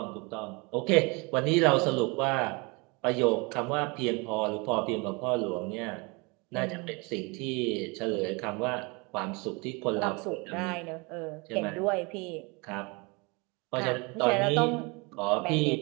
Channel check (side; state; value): left; quieter; 28.4 dB